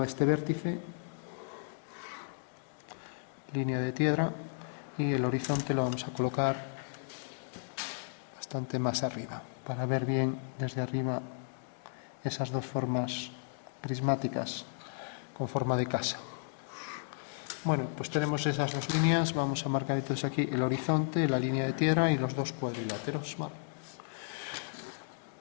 a este vértice, línea de tierra, y el horizonte lo vamos a colocar bastante más arriba, para ver bien desde arriba esas dos formas prismáticas con forma de casa. Bueno, pues tenemos esas dos líneas, vamos a marcar entonces aquí el horizonte, la línea de tierra y los dos cuadriláteros. Vale.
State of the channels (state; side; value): silent; right; digital silence